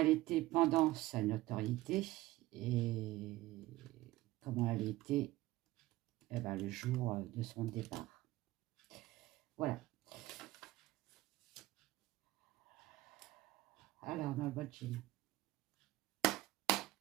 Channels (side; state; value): left; quieter; 17.6 dB